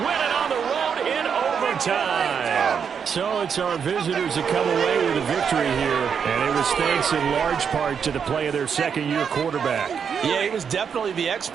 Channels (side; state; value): left; quieter; 7.0 dB